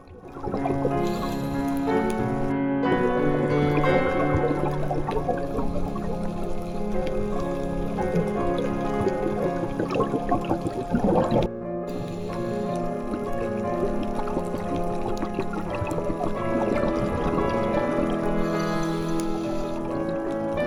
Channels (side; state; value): both; identical; correlation 1.00